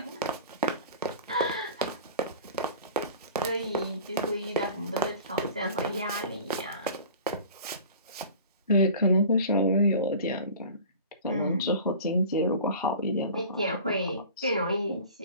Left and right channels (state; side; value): inverted; both; correlation -0.40